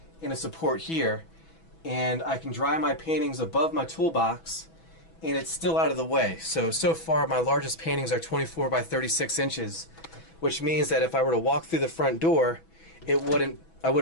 and a support here. And I can dry my paintings above my toolbox, and it's still out of the way. So far my largest paintings are 24 by 36 inches, which means that if I were to walk through the front door, I wouldn't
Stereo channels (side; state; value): right; late; 6.1 ms